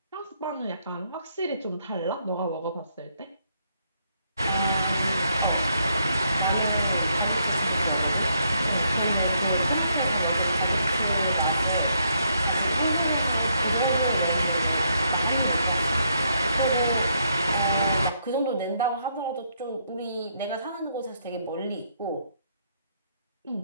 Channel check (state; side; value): inverted; both; correlation -0.74